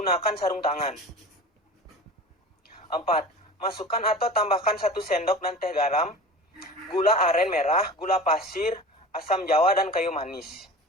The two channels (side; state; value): both; normal; correlation 0.36